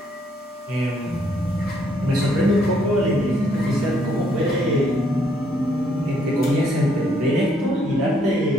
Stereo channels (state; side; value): normal; both; correlation 0.69